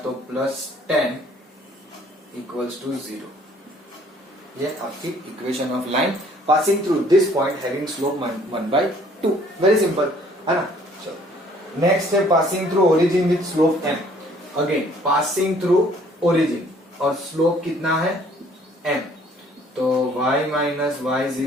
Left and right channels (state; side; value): normal; both; correlation 0.59